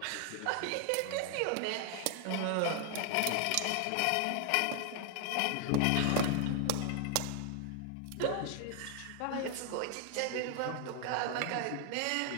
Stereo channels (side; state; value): both; different; correlation 0.00